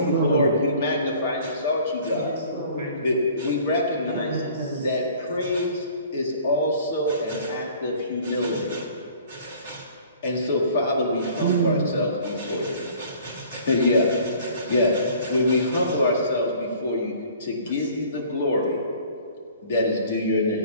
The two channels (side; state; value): both; inverted; correlation -0.51